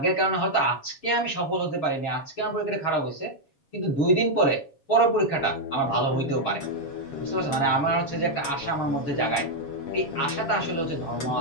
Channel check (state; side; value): late; right; 7.2 ms